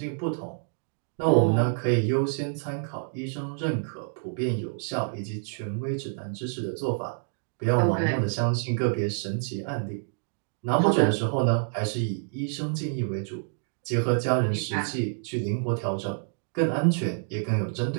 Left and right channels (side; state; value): left; silent; digital silence